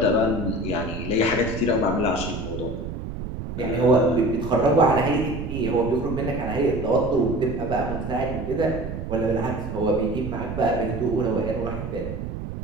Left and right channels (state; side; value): noise; right; rumble, 7 dB below the sound